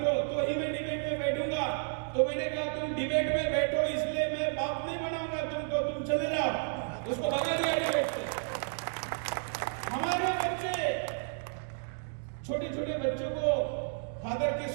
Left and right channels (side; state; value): left; silent; digital silence